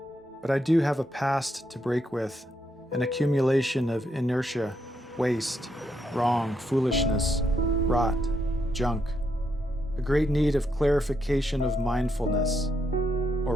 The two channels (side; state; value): both; normal; correlation 0.79